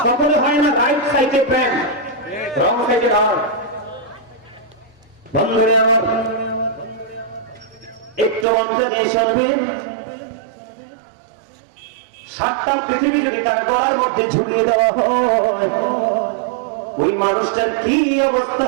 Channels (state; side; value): drops out; left; at 8.5 s